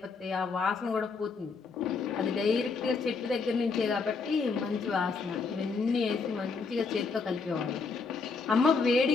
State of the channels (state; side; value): quieter; right; 4.7 dB